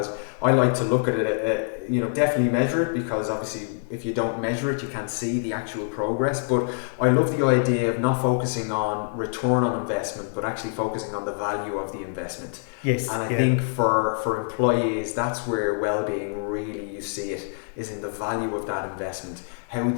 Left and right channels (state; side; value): silent; right; 61 dB below the other